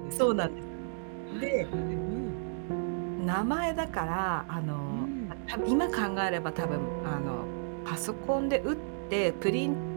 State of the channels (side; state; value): left; silent; digital silence